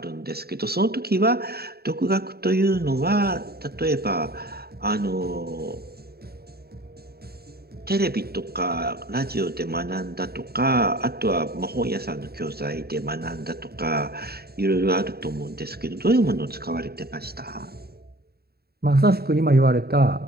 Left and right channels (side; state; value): left; late; 0.46 ms